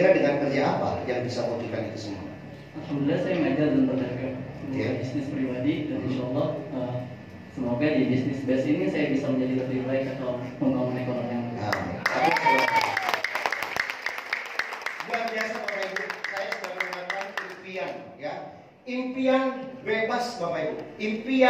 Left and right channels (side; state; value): both; identical; correlation 1.00